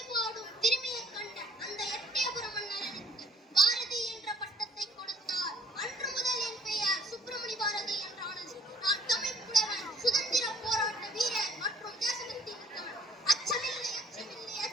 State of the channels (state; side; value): normal; both; correlation 0.57